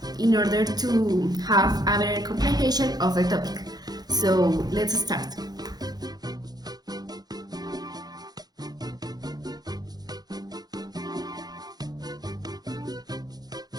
in order to have a better comprehension of the topic. So let's start.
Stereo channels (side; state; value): left; late; 0.19 ms